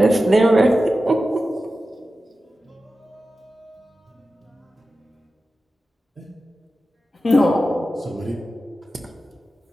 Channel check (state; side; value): normal; both; correlation 0.93